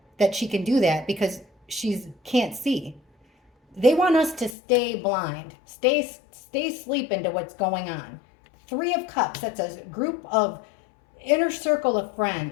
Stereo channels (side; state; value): right; drops out; at 4.5 s